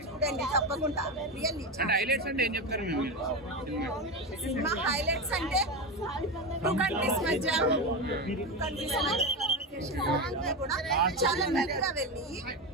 చూడండి తప్పకుండా. రియల్లీ సినిమా హైలైట్స్ అంటే టూ కంట్రీస్ మధ్య కూడా చాలా మెరుగ్గా వెళ్ళి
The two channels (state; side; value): normal; both; correlation 0.17